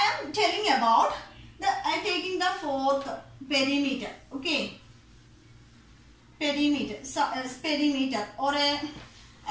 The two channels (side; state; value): both; identical; correlation 1.00